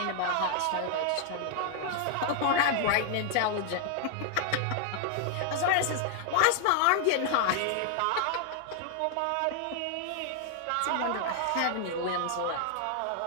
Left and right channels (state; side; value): different; both; correlation 0.00